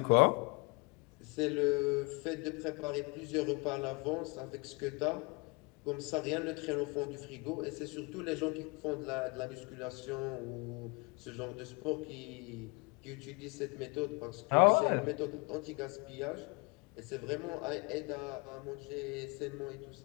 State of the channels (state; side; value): quieter; right; 28.6 dB